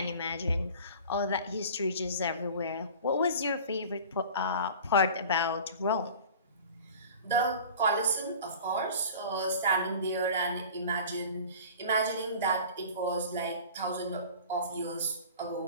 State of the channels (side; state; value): both; inverted; correlation -0.41